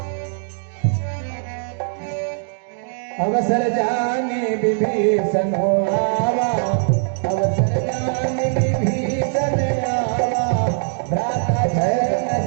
अवसर जाने विभीषण हो आवा, अवसर जाने विभीषण आवा। भ्राता जय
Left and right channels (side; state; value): left; silent; digital silence